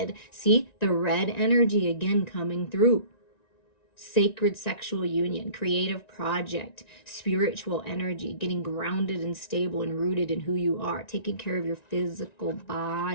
See the red energy again coming through. Sacred sexual union, creative project, spiritual energy, getting grounded and stable and rooted in who you are, taking care of your physical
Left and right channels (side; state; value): right; late; 1.9 ms